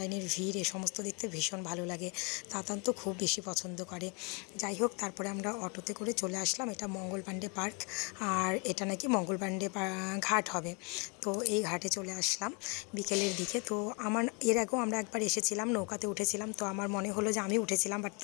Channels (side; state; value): right; quieter; 31.8 dB